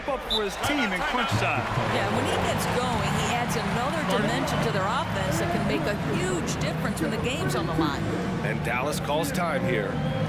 up for his team in crunch time. Yeah, when he gets going, he adds another dimension to their offense that can make a huge difference when the game's on the line. And Dallas calls time here.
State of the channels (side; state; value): both; identical; correlation 1.00